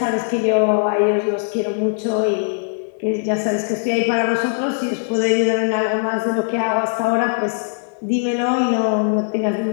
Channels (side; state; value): right; silent; digital silence